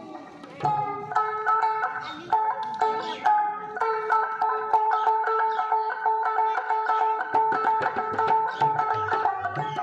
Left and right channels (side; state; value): both; identical; correlation 1.00